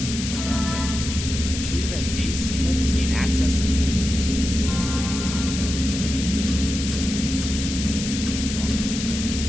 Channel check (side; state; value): left; noise; hiss, 6 dB below the sound